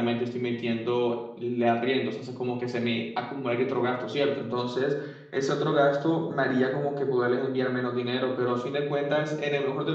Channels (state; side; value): identical; both; correlation 1.00